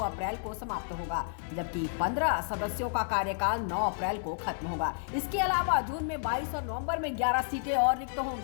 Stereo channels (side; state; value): right; silent; digital silence